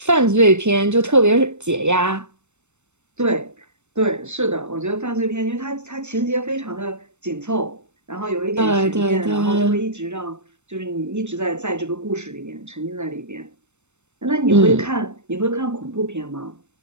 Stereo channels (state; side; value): late; left; 0.83 ms